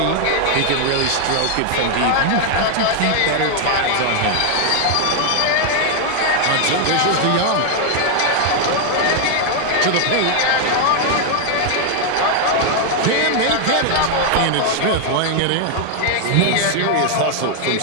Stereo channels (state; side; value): different; both; correlation 0.00